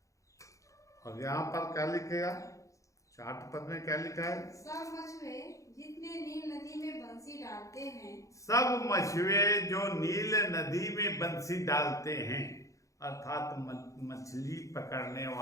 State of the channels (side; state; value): right; late; 0.15 ms